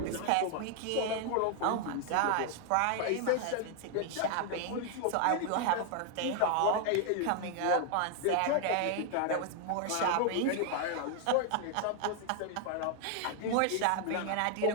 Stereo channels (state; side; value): different; both; correlation 0.00